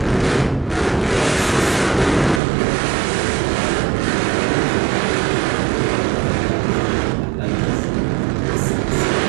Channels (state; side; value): drops out; left; at 2.4 s